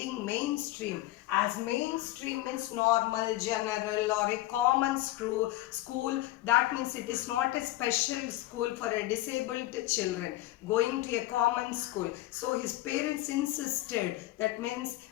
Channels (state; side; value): quieter; right; 16.5 dB